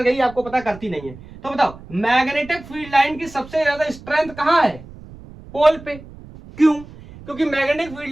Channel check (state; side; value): noise; right; rumble, 18 dB below the sound